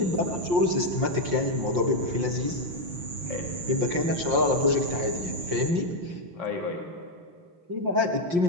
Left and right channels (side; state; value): left; late; 5.6 ms